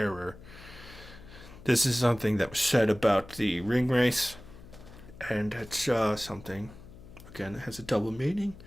This is something that was said about the ring race, and it's something, again, it has a double meaning,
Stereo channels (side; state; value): left; noise; hum, 18 dB below the sound